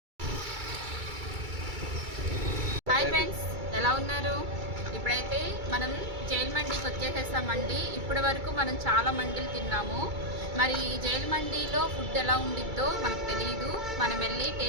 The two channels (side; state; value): left; late; 2.3 ms